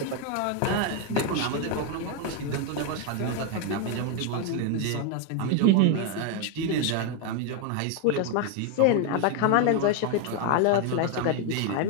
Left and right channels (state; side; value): different; both; correlation 0.01